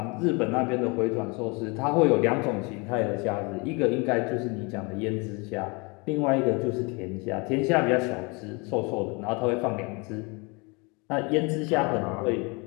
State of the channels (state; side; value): quieter; right; 29.5 dB